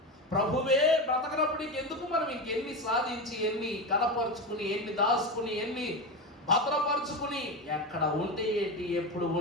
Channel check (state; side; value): normal; both; correlation 0.19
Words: ప్రభువే బ్రతకనప్పుడు ఇంకెందుకు మనం ఇంకెన్ని సాధించి, ఎన్ని కనపరుచుకుని, ఎన్ని దాచుకుని, ఎన్ని భద్రపరుచుకుని, ఎక్కడ ఉంటే ఏంటి, ఎప్పుడు